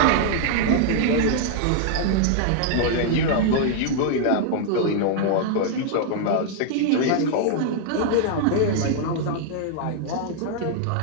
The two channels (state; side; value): different; both; correlation -0.01